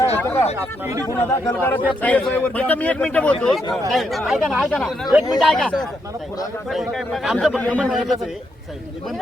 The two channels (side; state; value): both; normal; correlation 0.79